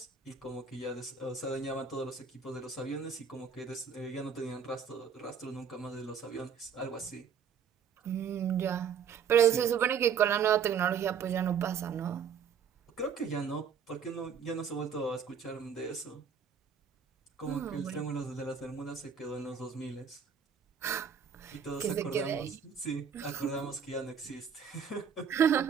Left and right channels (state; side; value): quieter; left; 7.0 dB